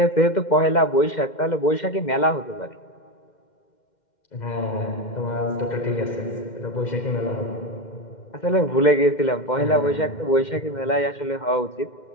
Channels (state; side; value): late; right; 2.1 ms